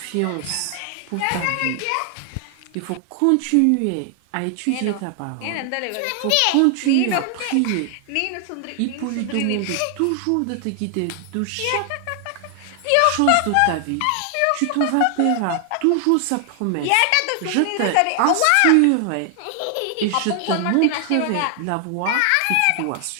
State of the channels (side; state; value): both; different; correlation 0.00